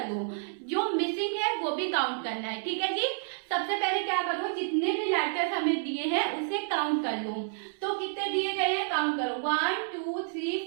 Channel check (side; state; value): left; silent; 58 dB below the other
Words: लो, जो मिसिंग है वो भी काउंट करना है, ठीक है जी। सबसे पहले क्या करो, जितने भी लेटर्स हमें दिए हैं उसे काउंट कर लो। तो कितने दिए गए हैं, काउंट करो। 1 2 3